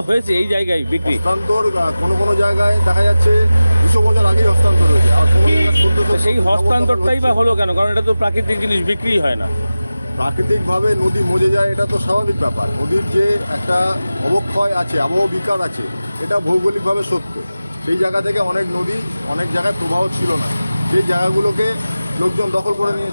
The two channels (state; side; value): inverted; both; correlation -0.96